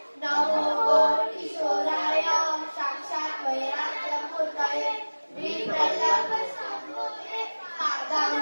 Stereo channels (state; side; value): inverted; both; correlation -1.00